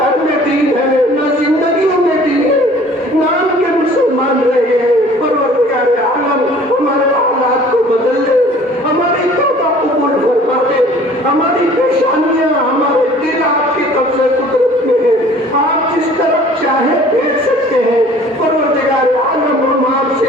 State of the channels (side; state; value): both; normal; correlation 0.51